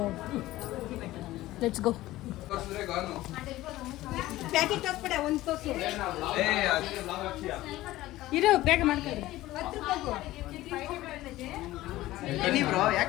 let's go. ಇರೋ ಬೇಗ ಮಾಡ್ಕೊಳ್ಳಿ.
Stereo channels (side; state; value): right; quieter; 16.5 dB